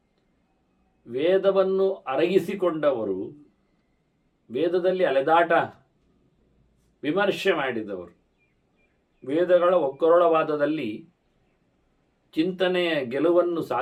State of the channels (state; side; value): identical; both; correlation 1.00